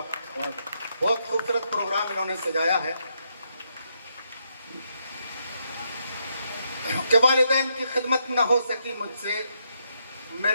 बहुत खूबसूरत प्रोग्राम इन्होंने सजाया है कि वालिदैन की खिदमत न हो सकी मुझसे।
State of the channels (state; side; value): inverted; both; correlation -0.78